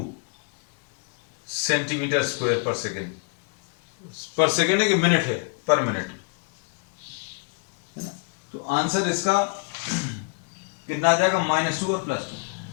सेंटीमीटर स्क्वायर पर सेकेंड, पर सेकेंड है कि मिनट है, पर मिनट, है ना। तो आंसर इसका कितना आ जाएगा, -2 और +2।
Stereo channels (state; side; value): quieter; right; 36.5 dB